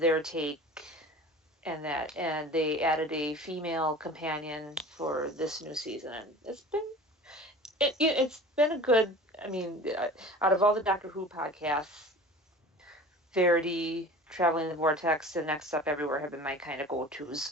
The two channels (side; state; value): both; normal; correlation 0.40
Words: take and they added a female companion for this new season, and it's been a good. I mean, out of all the Doctor Who podcasts, Verity, Traveling the Vortex, and Next Up Everywhere have been my kind of go-tos,